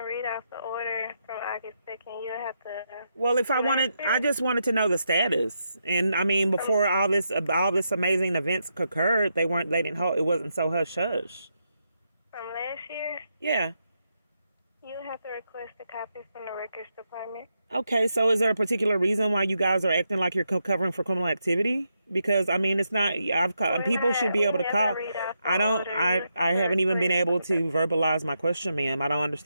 read off the order from August 2nd. You have to. Well, I just wanted to know the status. And I mean, before all this amazing events occurred, it wasn't so hush hush. From last year? Yeah. You have to request a copy from the records department. Okay, so is there a particular reason why you guys are acting like you're covering for criminal activity? Because I mean, it's not. People should be able to call. I haven't even been able to verbalize my question, ma'am. I don't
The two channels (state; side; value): inverted; both; correlation -0.83